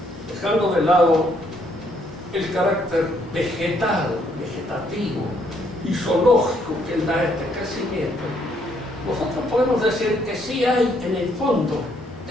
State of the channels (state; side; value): normal; both; correlation 0.70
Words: dejando de lado el carácter vegetal, vegetativo y zoológico que da este crecimiento, nosotros podemos decir que sí hay en el fondo